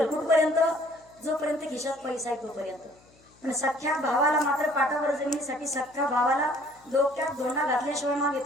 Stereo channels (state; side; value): noise; left; hum, 30 dB below the sound